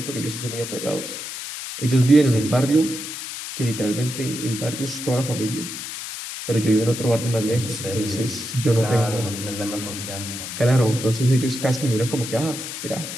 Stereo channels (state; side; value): noise; left; hiss, 8 dB below the sound